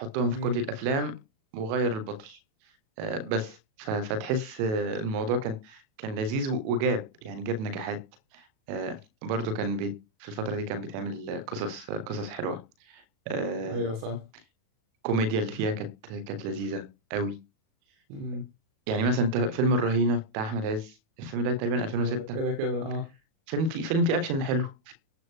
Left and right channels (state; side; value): late; left; 37 ms